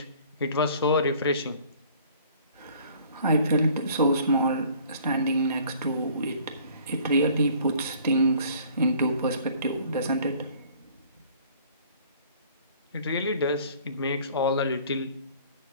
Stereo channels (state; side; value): inverted; both; correlation -0.53